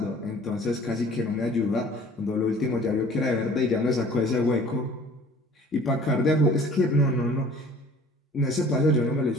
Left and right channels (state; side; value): normal; both; correlation 0.50